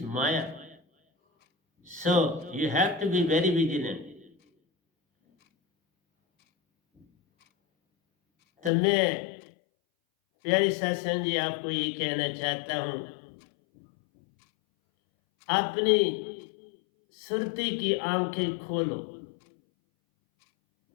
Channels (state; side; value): drops out; right; at 8.7 s